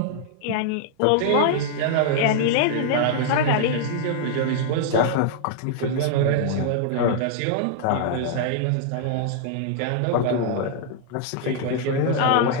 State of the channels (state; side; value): different; both; correlation -0.01